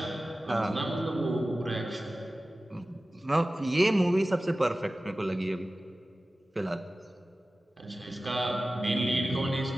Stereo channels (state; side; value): normal; both; correlation 0.96